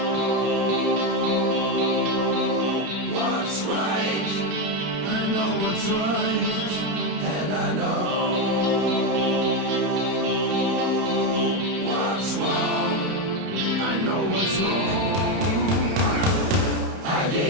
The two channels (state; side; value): late; left; 30 ms